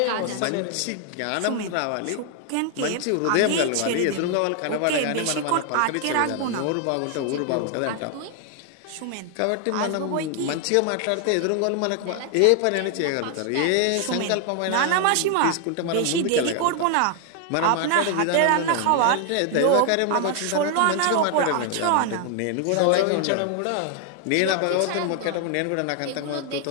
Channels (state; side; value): different; both; correlation 0.00